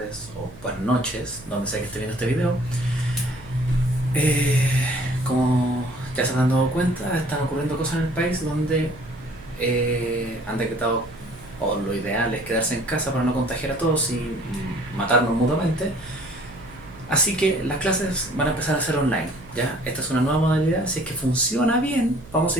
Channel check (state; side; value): noise; right; hum, 20 dB below the sound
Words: o buenas noches, donde sea que esté viendo este video. Como ya se habrán dado cuenta, están ocurriendo cosas en el país donde han decretado, o lo ideal es quedarse en casa para no contagiar a todos y matarnos mutuamente. Así que las clases van a empezar a ser online, ¿ya? Esta es una nueva modalidad, si es que funciona bien,